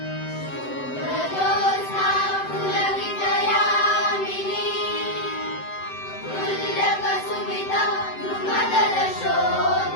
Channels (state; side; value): late; right; 7.8 ms